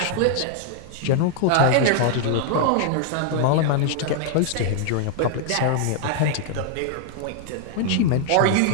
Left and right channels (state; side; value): different; both; correlation -0.01